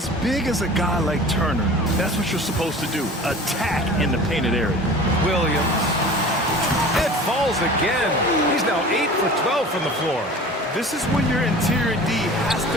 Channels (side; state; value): both; normal; correlation 0.41